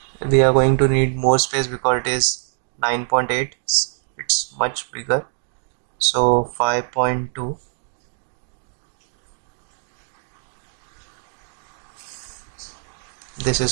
We are going to need more space because it is 9.8, it's much bigger. So 5.2, this is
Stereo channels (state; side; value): silent; left; digital silence